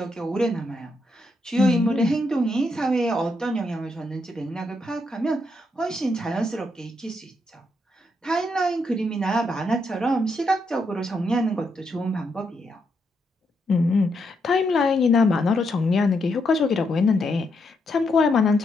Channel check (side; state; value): both; normal; correlation 0.79